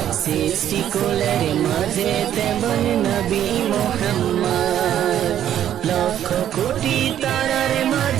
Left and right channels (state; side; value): quieter; left; 10.8 dB